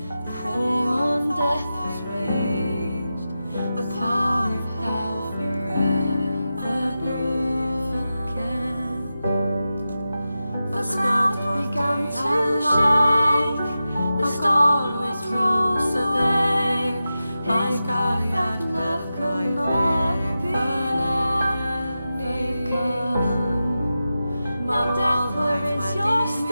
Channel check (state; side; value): inverted; both; correlation -0.92